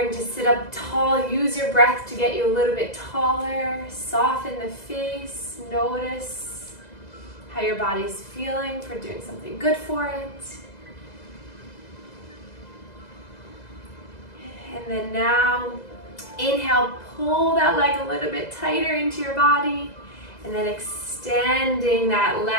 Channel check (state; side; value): late; right; 2.0 ms